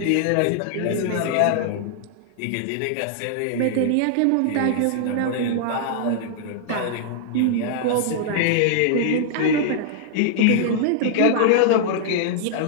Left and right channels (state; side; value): different; both; correlation -0.01